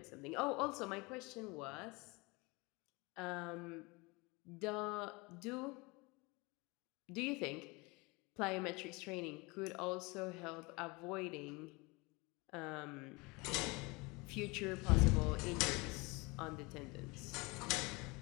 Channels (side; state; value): right; quieter; 25.9 dB